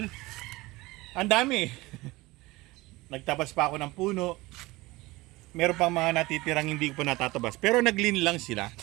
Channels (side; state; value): left; quieter; 20.8 dB